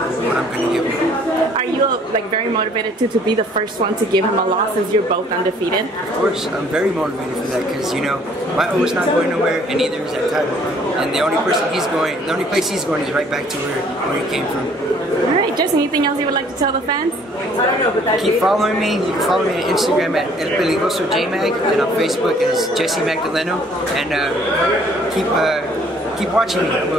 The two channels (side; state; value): both; normal; correlation 0.59